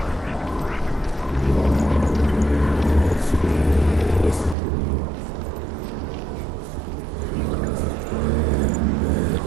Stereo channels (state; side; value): drops out; left; at 4.5 s